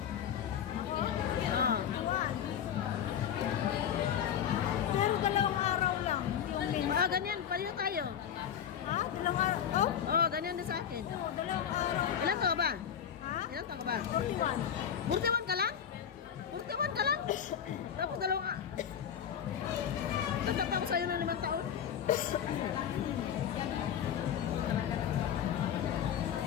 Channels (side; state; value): right; quieter; 8.7 dB